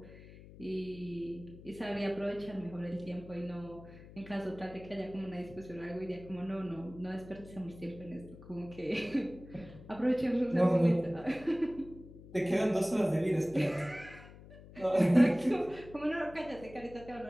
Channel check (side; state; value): left; noise; hum, 18 dB below the sound